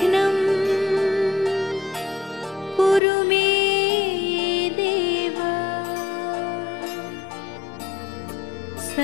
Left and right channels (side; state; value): right; drops out; at 3.0 s